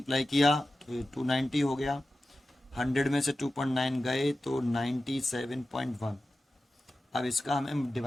किया तो ये 290 हो गया, 100 में से 2.9 गए तो 97.1। अब इसका हमें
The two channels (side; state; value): both; normal; correlation 0.94